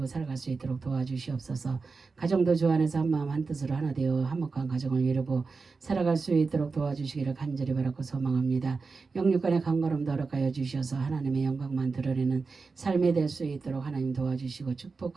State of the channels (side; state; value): left; quieter; 4.4 dB